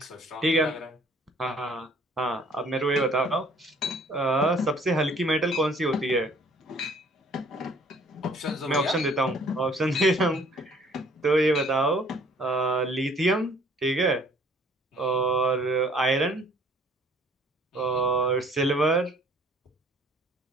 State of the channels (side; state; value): both; normal; correlation 0.57